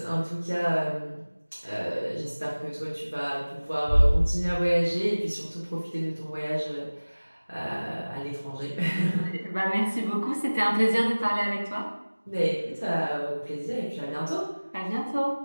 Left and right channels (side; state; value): both; inverted; correlation -1.00